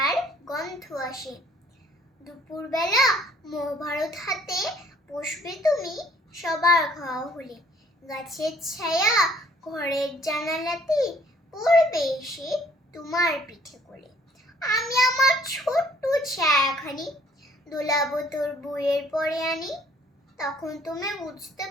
গন্ধ আসে। দুপুরবেলা মহাভারত হাতে বসবে তুমি সবার খাওয়া হলে। গাছের ছায়া ঘরের জানালাতে পড়বে এসে তোমার পিঠে কোলে। আমি আমার ছোট্ট ছায়াখানি দোলাবো তোর বইয়ের পরে আনি। তখন তুমি বুঝতে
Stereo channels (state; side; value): normal; both; correlation 0.60